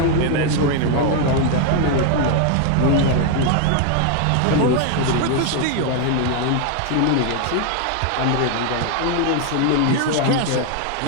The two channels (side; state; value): both; different; correlation 0.01